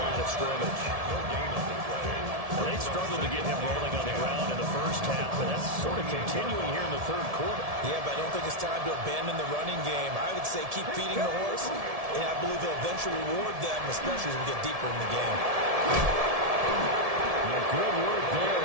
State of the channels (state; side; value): late; left; 1.7 ms